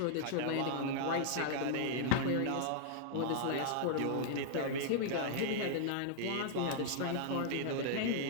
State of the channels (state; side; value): different; both; correlation -0.01